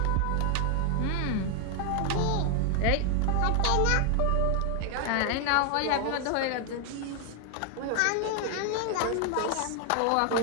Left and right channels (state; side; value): different; both; correlation 0.01